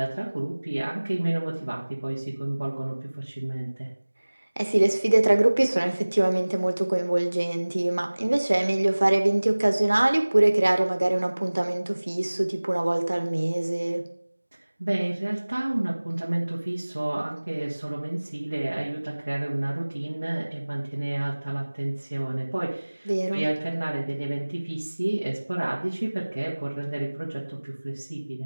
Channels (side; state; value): both; inverted; correlation -1.00